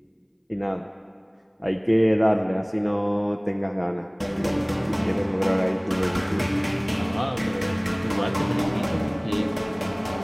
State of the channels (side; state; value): both; identical; correlation 1.00